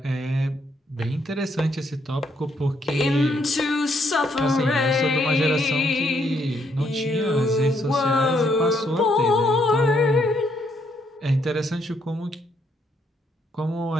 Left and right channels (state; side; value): normal; both; correlation 0.73